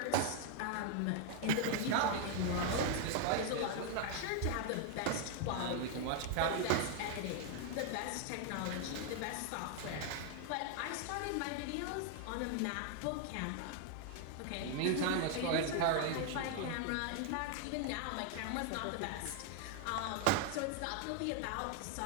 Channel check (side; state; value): both; different; correlation 0.00